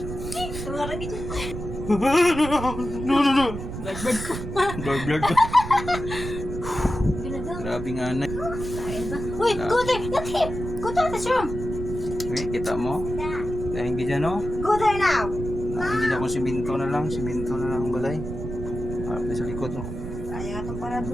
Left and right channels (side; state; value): right; noise; rumble, 7 dB below the sound